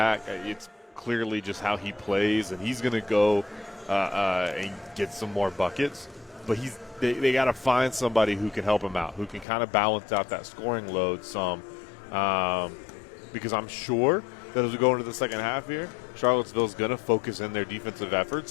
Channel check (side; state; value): right; drops out; at 9.5 s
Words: It's clearly just how he plays, and he's going to go and get some more buckets. But they got to find somebody who can help him out, who can kind of balance out that scoring load some. Because I'm sure that as we go into the second half here, Charlottesville's going to focus in their defensive